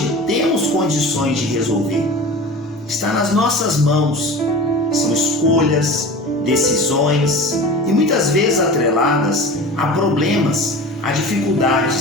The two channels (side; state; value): both; normal; correlation 0.35